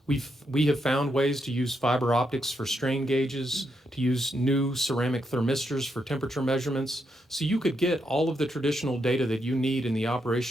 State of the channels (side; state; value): both; normal; correlation 0.81